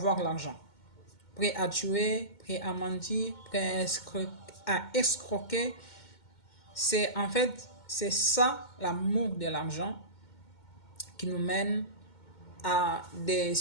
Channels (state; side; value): late; right; 2.2 ms